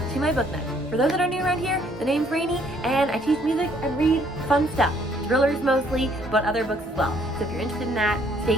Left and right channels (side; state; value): both; normal; correlation 0.64